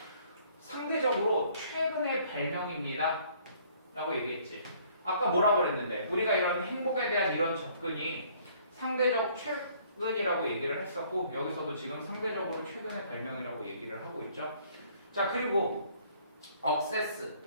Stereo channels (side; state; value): both; inverted; correlation -0.60